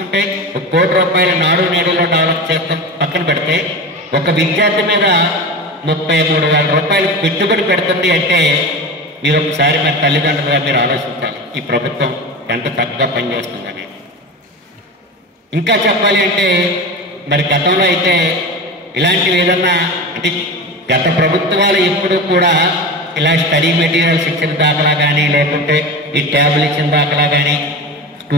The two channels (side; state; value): both; normal; correlation 0.27